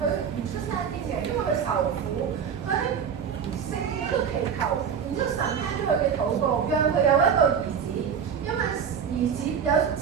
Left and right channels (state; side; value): quieter; left; 7.4 dB